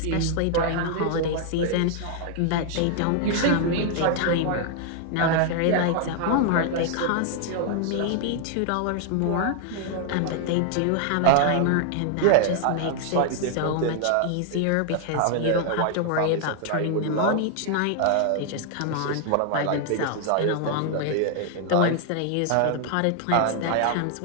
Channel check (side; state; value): both; different; correlation 0.00